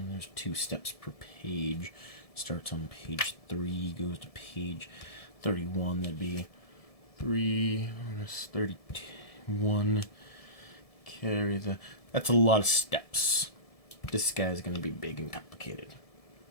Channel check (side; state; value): right; late; 1.7 ms